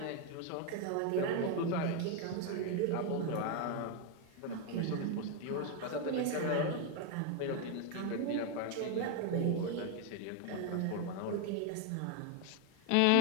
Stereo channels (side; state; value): both; different; correlation 0.01